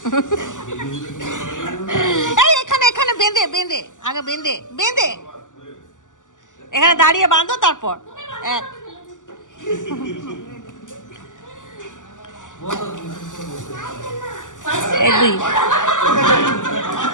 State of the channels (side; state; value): right; late; 0.87 ms